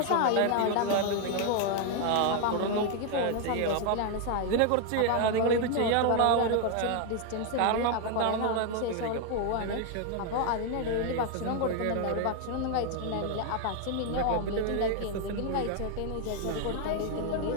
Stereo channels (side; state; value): both; different; correlation 0.01